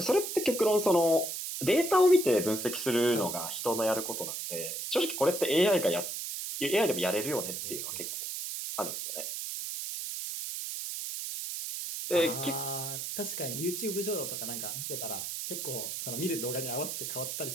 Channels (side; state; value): right; noise; hiss, 5 dB below the sound